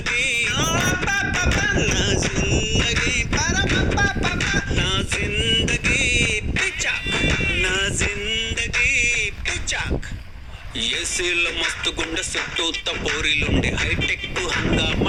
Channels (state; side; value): identical; both; correlation 1.00